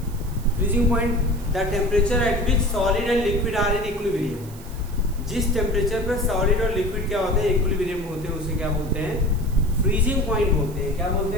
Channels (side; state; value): right; noise; hiss, 21 dB below the sound